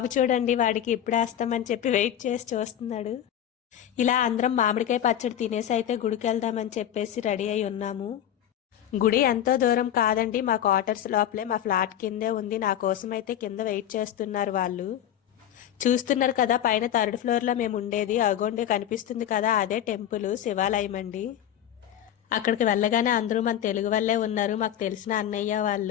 చూడండి, వాడికి ఇప్పుడు వేస్తామని చెప్పి వెయిట్ చేసి చూస్తున్నాడు. ఇలా అందరం మామిడికాయ పచ్చడి తినేసి అయితే గుడికి వెళ్దామని చెప్పేసి రెడీ అయి ఉన్నాము. గుడి ఎంతో దూరం కాదండి, మా క్వార్టర్స్ లోపలే మా ఫ్లాట్ కిందే ఉంది. నా కోసం అయితే కింద వెయిట్ చేస్తున్నారు వాళ్ళు. చూస్తున్నారు కదా, పైన 3rd ఫ్లోర్లో మేము ఉండేది. అగోండి కనిపిస్తుంది కదా, అదే టెంపుల్ శివాలయం అండి. అక్కడికి వెళ్ళగానే అందరూ మన తెలుగు వాళ్ళే ఉన్నారు, మాకు తెలిసిన అన్నయ్య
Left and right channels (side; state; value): right; quieter; 10.8 dB